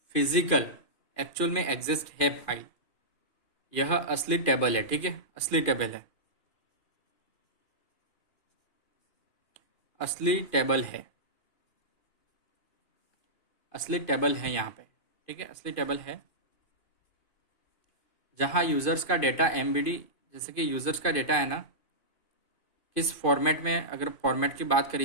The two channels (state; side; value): late; right; 2.5 ms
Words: फिजिकल एक्चुअल में एग्जिस्ट है फाइल, यह असली टेबल है, ठीक है, असली टेबल है, असली टेबल है, असली टेबल है यहाँ पे, ठीक है, असली टेबल है, जहाँ यूज़र्स का डेटा एमबीडी, जैसे कि यूज़र्स का डेटा है ना, किस फॉर्मेट में, अगर फॉर्मेट की बात